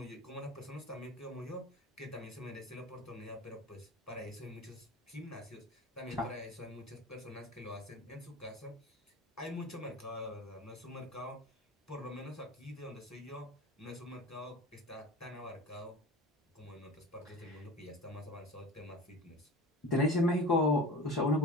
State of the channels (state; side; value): normal; both; correlation 0.35